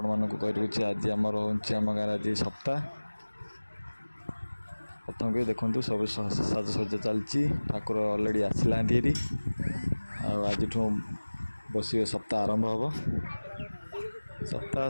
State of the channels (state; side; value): inverted; both; correlation -1.00